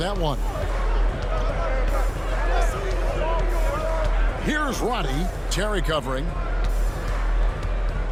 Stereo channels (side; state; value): both; identical; correlation 1.00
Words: one. Here's Roddy. Terry covering.